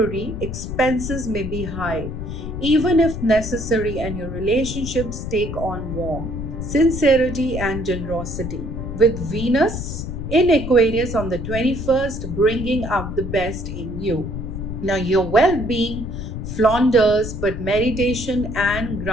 expenses may be high, even if necessary, and your relationships take on warmth, sincerity, and generosity. With Venus in Aquarius on the 21st, bringing out the best in you. Now, your well being flounders, but meditation and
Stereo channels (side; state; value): left; noise; rumble, 6 dB below the sound